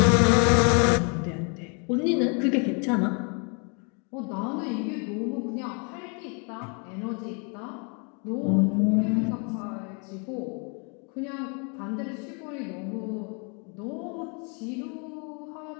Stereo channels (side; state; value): right; quieter; 36.3 dB